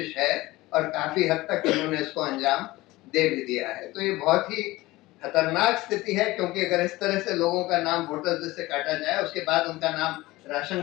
है और काफी हद तक इन्होंने इसको अंजाम दे भी दिया है। तो ये बहुत ही खतरनाक स्थिति है, क्योंकि अगर इस तरह से लोगों का नाम वोटर लिस्ट से काटा जाए, उसके बाद उनका नाम राशन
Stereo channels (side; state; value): right; quieter; 19.3 dB